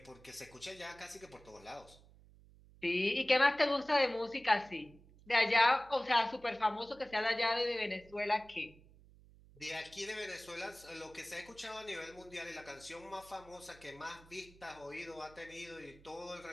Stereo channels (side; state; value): right; noise; hum, 24 dB below the sound